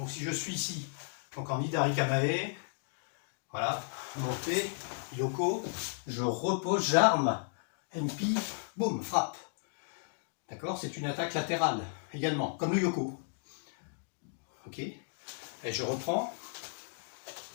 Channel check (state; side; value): silent; right; digital silence